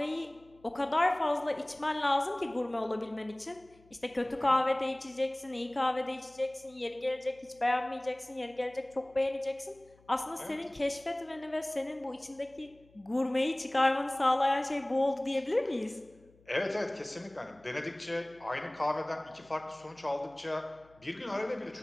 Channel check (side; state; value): left; noise; hum, 29 dB below the sound